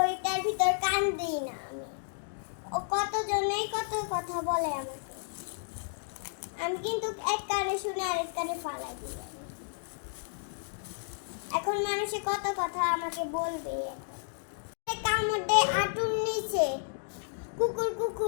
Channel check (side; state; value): right; silent; digital silence